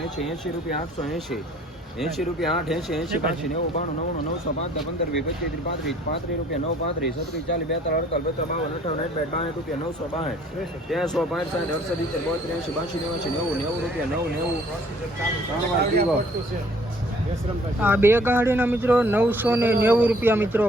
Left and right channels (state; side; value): normal; both; correlation 0.57